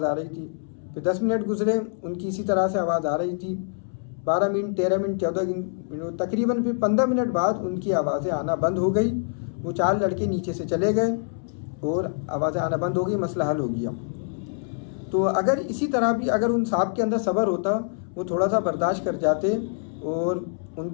आ रही थी। फिर 10 मिनट गुजरे, उनकी इसी तरह से आवाज़ आ रही थी। 12 मिनट, 13 मिनट, 14 मिनट, तकरीबन फिर 15 मिनट बाद उनकी आवाज़ें आना बंद हो गई। वो 4 लड़के नीचे से चले गए और आवाज़ें आना बंद हो गई, मसला हल हो गया। तो अगर इसी तरह भी अगर उन साहब के अंदर सब्र होता, वो थोड़ा सा बर्दाश्त कर जाते और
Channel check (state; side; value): silent; right; 61 dB below the other